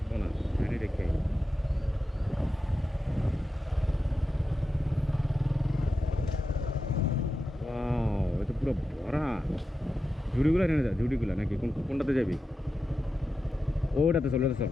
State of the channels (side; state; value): both; normal; correlation 0.91